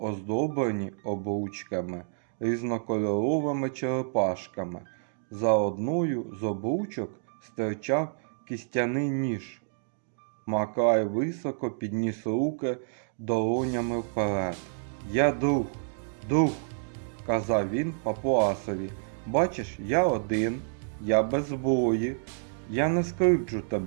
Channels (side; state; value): left; silent; digital silence